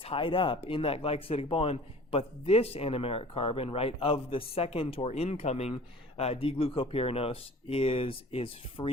up in that glycosidic bond, but this anomeric carbon, right, of the second or incoming D-glucopyranose is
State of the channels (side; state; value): both; normal; correlation 0.46